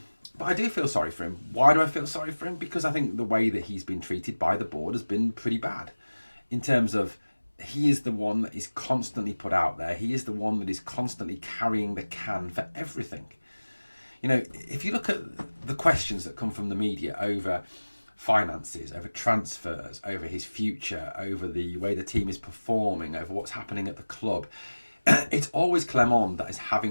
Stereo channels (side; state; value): both; inverted; correlation -1.00